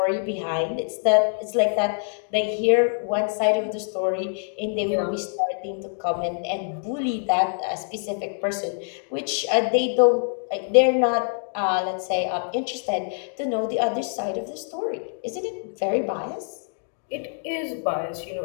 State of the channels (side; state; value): right; silent; digital silence